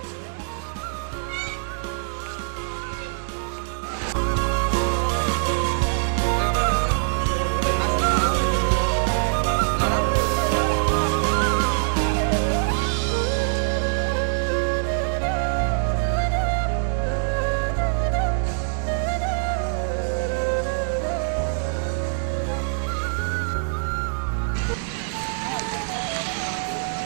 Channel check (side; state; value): left; silent; digital silence